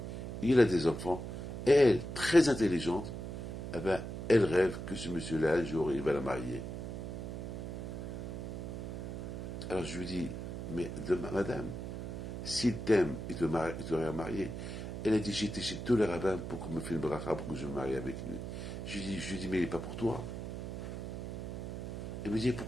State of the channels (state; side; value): noise; right; hum, 6 dB below the sound